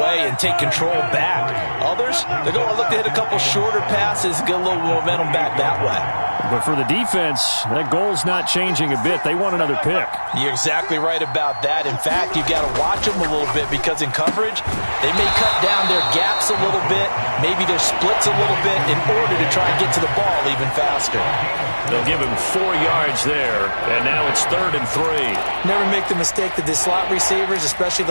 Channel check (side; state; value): both; inverted; correlation -1.00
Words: and take control back. Others, they're going to look to hit a couple shorter passes, get a little momentum back that way. But for the defense, that goal's not changing a bit. They want another pick. You're exactly right about that. In fact, you've got to watch them a little bit because in coverage, they may cut down their gaps a little bit, maybe their splits a little bit in order to try and get to the ball even faster. They'll give him 4 yards there, and now it's 3rd and 3. Never make the mistake that the slot receivers, especially